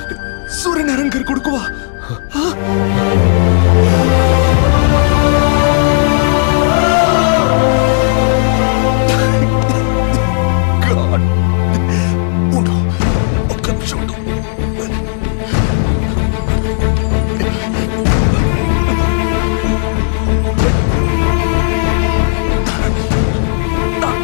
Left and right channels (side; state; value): right; silent; 71 dB below the other